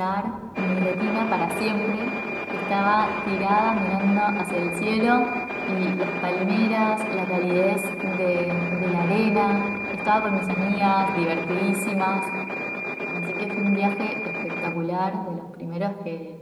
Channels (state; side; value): identical; both; correlation 1.00